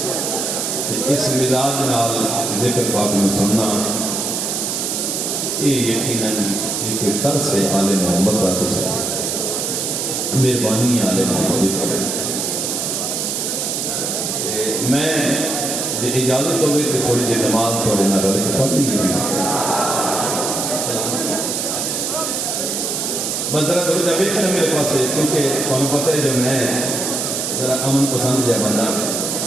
اس مزاج نال ذکر پاک میں سننا یہ یقیناً ایک طرز ہے آل محمد کا. تو سب مہربانی آل محمد. میں جی اجازت ہوگی تو تھوڑی جی نماز تھوڑے نہ رل کے پڑھ لیجیے جی. بس ذرا تھوڑی دیر ویکھنا میرے پاس ہے کیونکہ تمہیں پتہ ہے جو میں ذرا امن پسند جا بندہ.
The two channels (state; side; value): noise; right; hiss, 1 dB below the sound